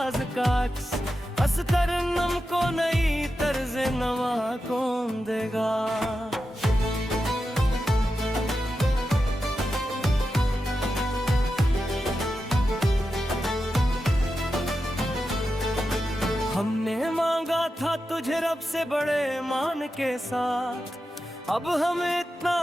का अक्स, अस तरन्नुम को नई तर्ज नवा कौन देगा। हमने मांगा था तुझे रब से बड़े मान के साथ, अब हमें इतना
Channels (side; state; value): both; normal; correlation 0.90